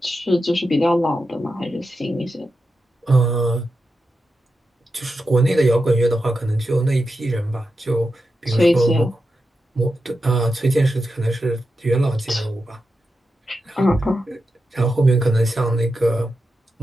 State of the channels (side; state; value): both; normal; correlation 0.88